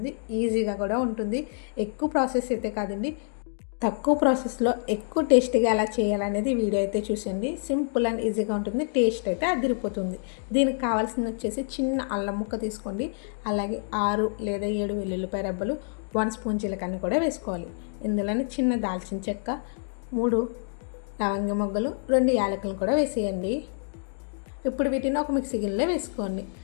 ఈజీగా కూడా ఉంటుంది. ఎక్కువ ప్రాసెస్ అయితే కాదండి, తక్కువ ప్రాసెస్లో ఎక్కువ టేస్టీగా ఎలా చేయాలనేది వీడియో అయితే చూసండి. సింపుల్ అండ్ ఈజీగా ఉంటుంది, టేస్ట్ అయితే అదిరిపోతుంది. దీనికి కావాల్సింది వచ్చేసి చిన్న అల్లం ముక్క తీసుకోండి, అలాగే 6 లేదా 7 వెల్లుల్లిపాయ రెబ్బలు, 1 స్పూన్ జీలకర్ర కూడా వేసుకోవాలి. ఇందులోనే చిన్న దాల్చిన చెక్క, 3 లవంగ మొగ్గలు, 2 యాలకులను కూడా వేసేయండి. ఇప్పుడు వీటిని ఒక మిక్సీ గిన్నెలో వేసుకోండి.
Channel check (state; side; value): silent; right; digital silence